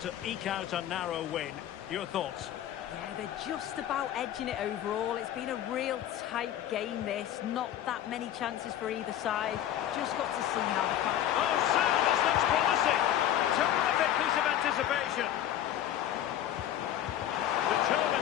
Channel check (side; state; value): right; quieter; 11.5 dB